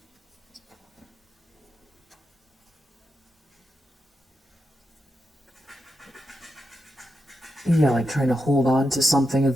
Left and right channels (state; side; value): normal; both; correlation 0.86